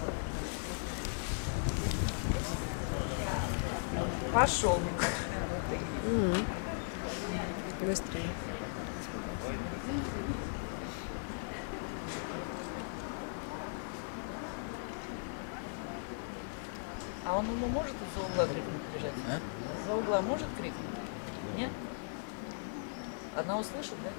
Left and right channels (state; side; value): silent; right; digital silence